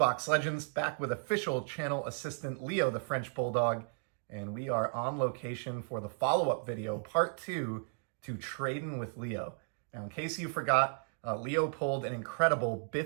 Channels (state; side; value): silent; left; 55 dB below the other